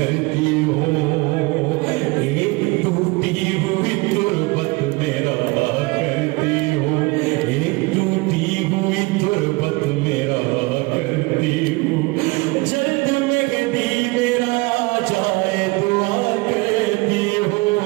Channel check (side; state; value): left; quieter; 24.7 dB